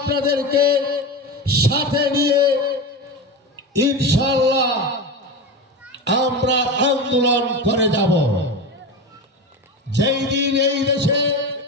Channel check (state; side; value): normal; both; correlation 0.23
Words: সাথে নিয়ে ইনশাআল্লাহ আমরা আন্দোলন করে যাব। যেই দিন এই দেশে